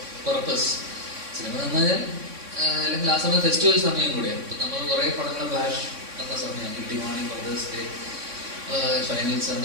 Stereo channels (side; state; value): left; late; 3.6 ms